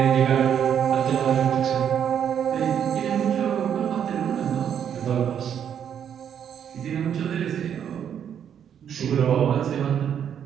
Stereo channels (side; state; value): left; quieter; 8.8 dB